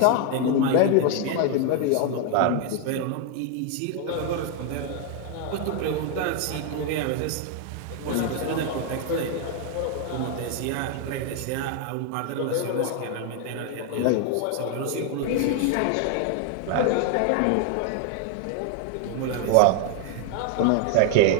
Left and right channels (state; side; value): different; both; correlation 0.00